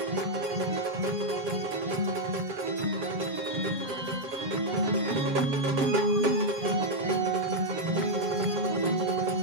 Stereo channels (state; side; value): late; left; 6.9 ms